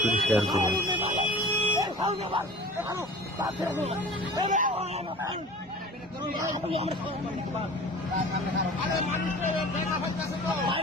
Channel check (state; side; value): normal; both; correlation 0.40